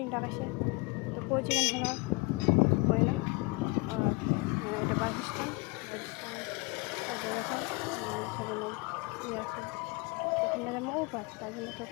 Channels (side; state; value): right; quieter; 26.1 dB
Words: ডাকাইছে তো পৌঁছে গেল হলো হয় না। আর এটা বাস স্ট্যান্ড এখন সেখানে ইয়ে আছে, ওখানে যেমন ও পাস, তার জন্য